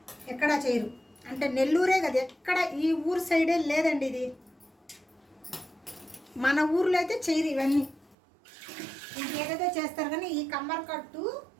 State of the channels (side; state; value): left; drops out; at 8.2 s